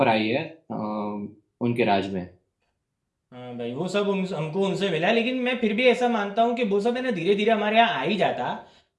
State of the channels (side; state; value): both; identical; correlation 1.00